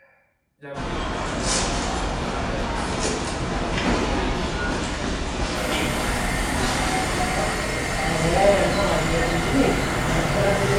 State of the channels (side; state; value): both; identical; correlation 1.00